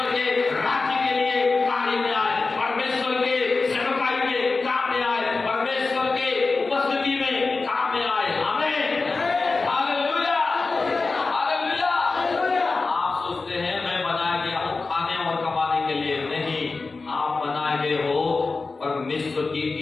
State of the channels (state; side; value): quieter; right; 3.9 dB